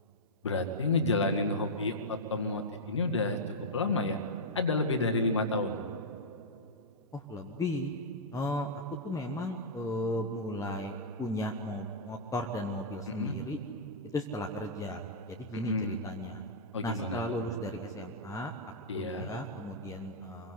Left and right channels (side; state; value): both; normal; correlation -0.10